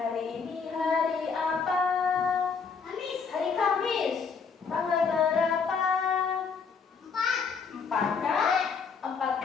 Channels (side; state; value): right; quieter; 5.5 dB